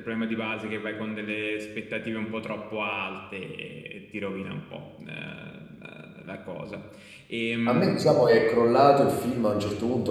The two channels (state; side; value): identical; both; correlation 1.00